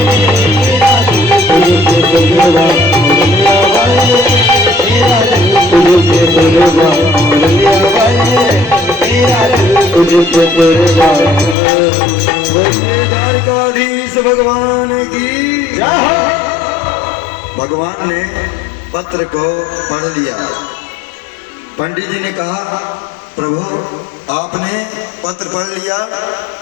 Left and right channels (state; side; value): drops out; right; at 11.6 s